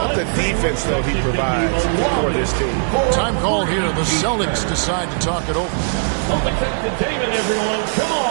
the defense, though, he provides for this team? Time call here. The Celtics decide to talk it over. Celtics entertainment, everyone. Come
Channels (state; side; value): silent; left; digital silence